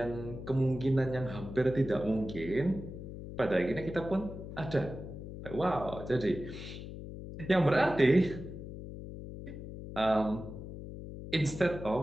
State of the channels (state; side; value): noise; left; hum, 10 dB below the sound